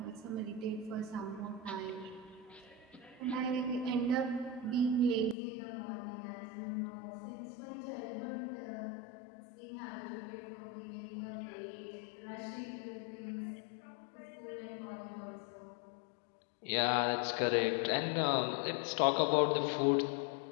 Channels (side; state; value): right; drops out; at 5.4 s